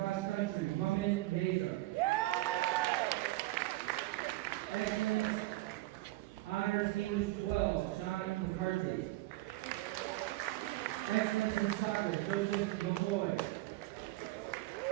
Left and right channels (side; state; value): left; quieter; 18.6 dB